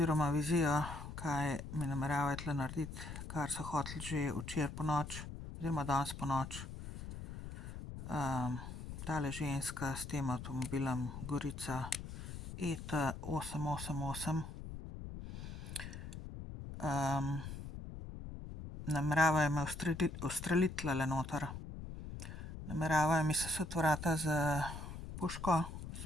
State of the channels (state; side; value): noise; left; rumble, 9 dB below the sound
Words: vizijo, kaj mi nameravajo tle narediti, kar so hoteli že včeraj ponoči oziroma danes ponoči. Tale ženska s tem avtomobilom Gorica ET 888. Nameravajo me ustreliti tlele noter. Nameravajo mi sesuti vrata z puško,